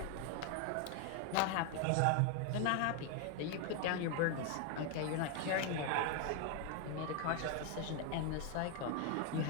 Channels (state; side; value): different; both; correlation 0.01